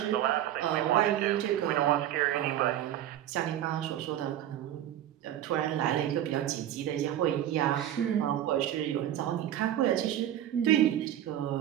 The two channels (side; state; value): left; quieter; 11.8 dB